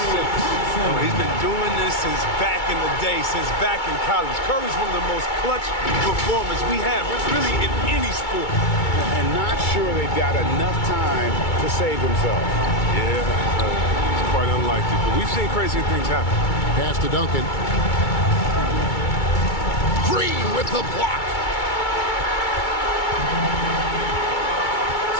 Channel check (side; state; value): right; late; 2.3 ms